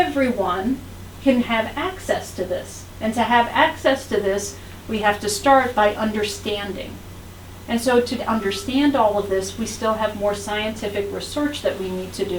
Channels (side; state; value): both; identical; correlation 1.00